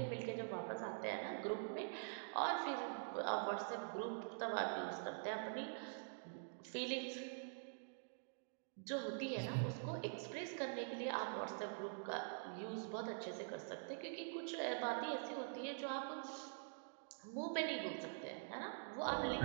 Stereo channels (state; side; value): silent; left; digital silence